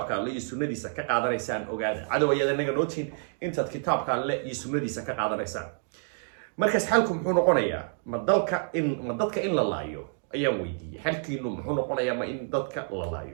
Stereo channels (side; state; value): left; silent; 59 dB below the other